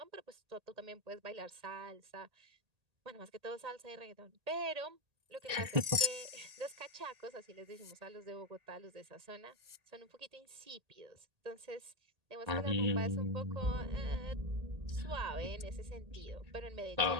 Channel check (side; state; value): left; late; 1.8 ms